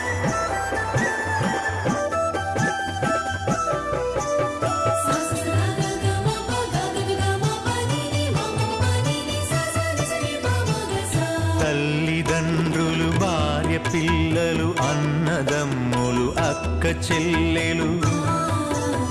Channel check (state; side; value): identical; both; correlation 1.00